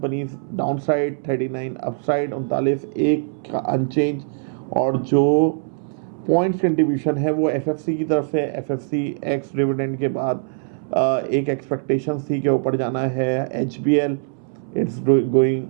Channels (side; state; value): left; silent; 64 dB below the other